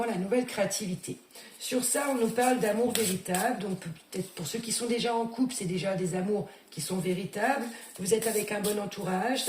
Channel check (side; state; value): both; identical; correlation 1.00